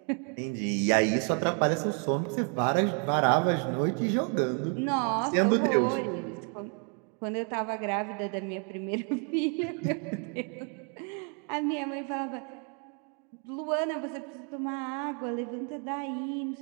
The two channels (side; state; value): left; quieter; 39.9 dB